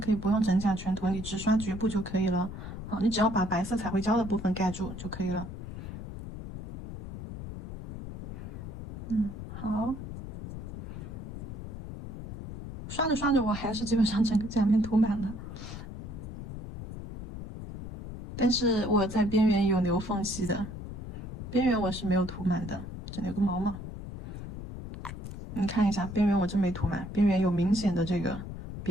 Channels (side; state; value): left; noise; rumble, 9 dB below the sound